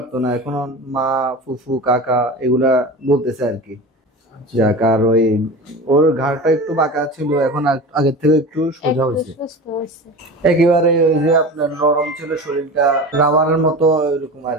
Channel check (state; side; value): normal; both; correlation 0.32